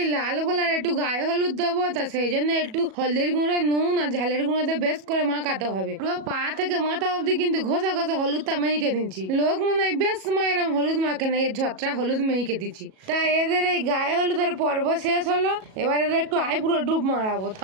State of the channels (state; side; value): late; left; 37 ms